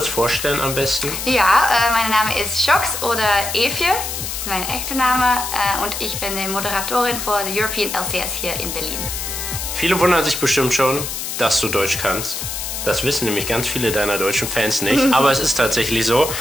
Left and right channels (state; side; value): noise; left; hiss, 5 dB below the sound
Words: vorstellen am besten? Ja, mein Name ist Shox oder Evje. Das ist mein echter Name. Und ich bin die Moderatorin für die European LCS hier in Berlin. Viele wundern sich bestimmt schon, dass du Deutsch kannst. Das wissen nämlich ganz viele deiner deutschen Fans nicht, aber es ist tatsächlich so.